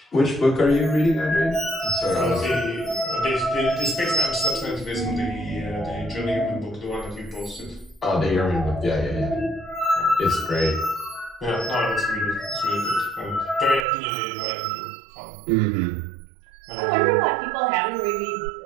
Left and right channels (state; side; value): drops out; left; at 13.9 s